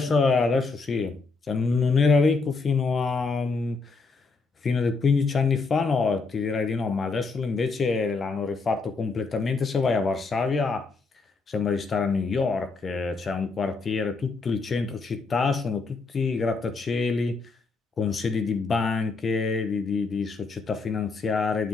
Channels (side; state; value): right; quieter; 4.2 dB